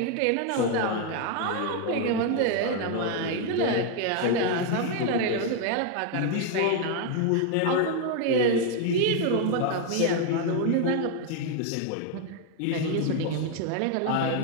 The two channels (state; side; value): different; both; correlation 0.01